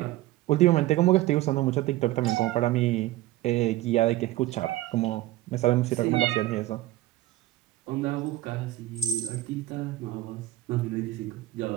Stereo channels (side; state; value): left; quieter; 16.0 dB